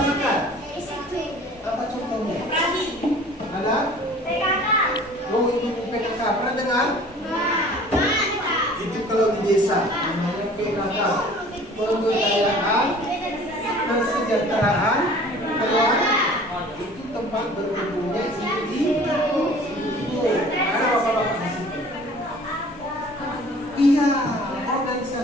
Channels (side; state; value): both; normal; correlation 0.48